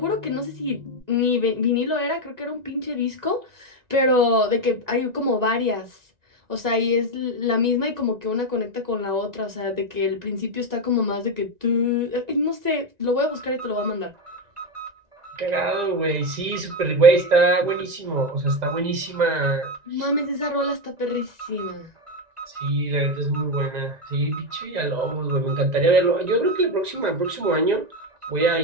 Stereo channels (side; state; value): left; late; 1.9 ms